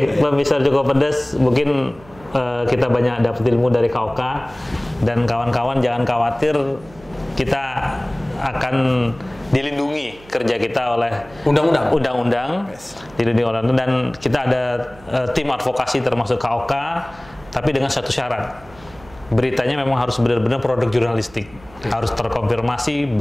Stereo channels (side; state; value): right; noise; hum, 23 dB below the sound